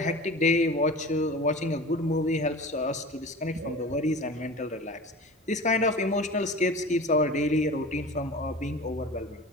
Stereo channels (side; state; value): both; normal; correlation 0.35